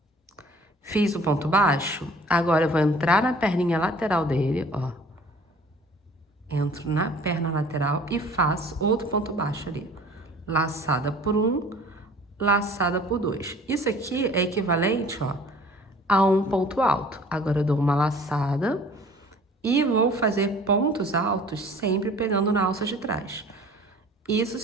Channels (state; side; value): normal; both; correlation 0.49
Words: Fiz o ponto baixo, agora eu vou entrar na perninha lateral dele, ó. Entro na perna lateral e faço outro ponto baixo ali. Laçada por 1, laçada por 2. Isso aqui é equivalente, ó, a um ponto alto. Agora eu dou uma laçada e vou fazer pontos altos sempre pegando na alça de trás. Isso